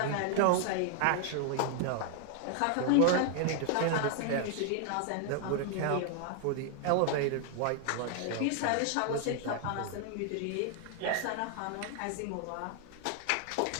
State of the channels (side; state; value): both; different; correlation 0.00